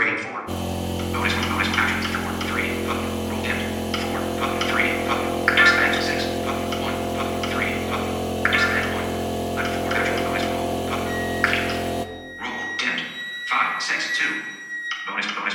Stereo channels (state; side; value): identical; both; correlation 1.00